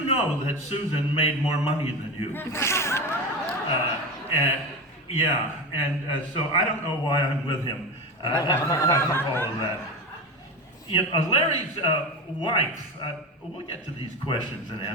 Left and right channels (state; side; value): normal; both; correlation 0.22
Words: know that Susan made more money than you." So I don't know why I'm with him after all of that. Larry's wife, we'll get to these questions and